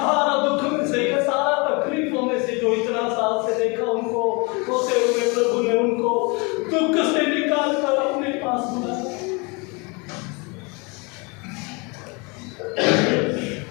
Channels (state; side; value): quieter; right; 29.4 dB